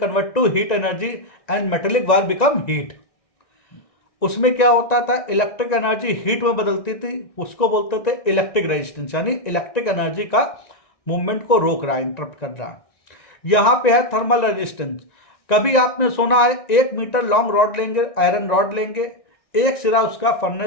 to heat energy and metallic wire become heat. उसमें क्या होता था, electric energy heat में बदलती थी, उसको बोलते थे इलेक्ट्रिक रेजिस्टेंस, यानी इलेक्ट्रिक एनर्जी का मूवमेंट को रोक रहा है, इंटरप्ट कर रहा है. यहां पे है थर्मल रेजिस्टेंस. कभी आपने सुना है 1 मीटर लॉन्ग रॉड लेंगे, आयरन रॉड लेंगे, एक सिरा उसका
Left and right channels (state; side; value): late; right; 1.9 ms